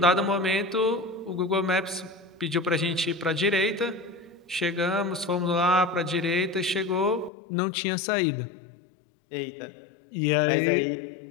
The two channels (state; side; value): drops out; right; at 7.3 s